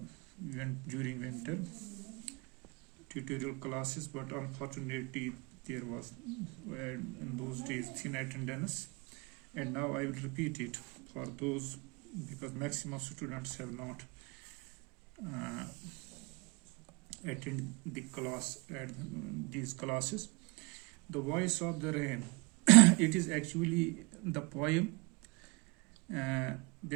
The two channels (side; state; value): left; quieter; 28.6 dB